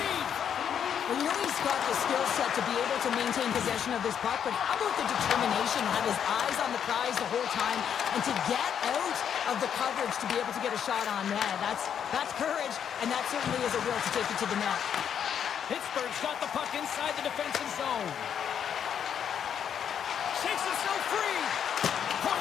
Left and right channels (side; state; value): right; quieter; 8.4 dB